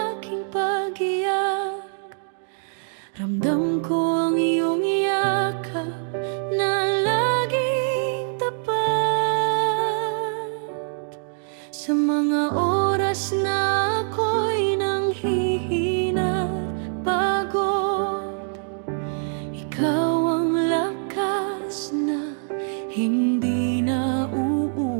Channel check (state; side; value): silent; left; 63 dB below the other